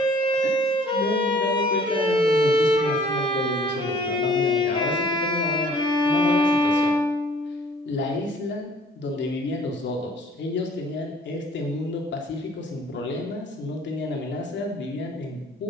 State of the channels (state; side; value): normal; both; correlation 0.54